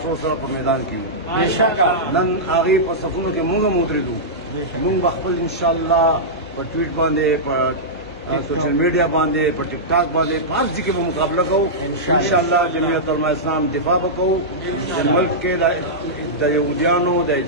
سره په میدان کې یو بېشکه نن هغې په صفونو کې مونږ هم ودرېدو. مونږ به خپل انشاءالله په ټویټ باندې په سوشل میډیا باندې په ټیک ټاک باندې په هر ځای کې به مقابله کوو انشاءالله. جمعیت علماء اسلام دفاع به کوو چې ملک کې د یهودیانو د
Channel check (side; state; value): both; normal; correlation -0.12